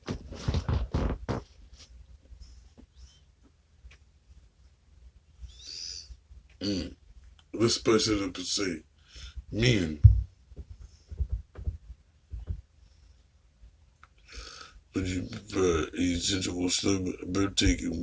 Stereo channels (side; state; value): both; identical; correlation 1.00